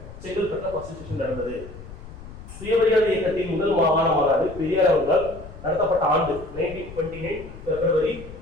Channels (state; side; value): noise; left; rumble, 15 dB below the sound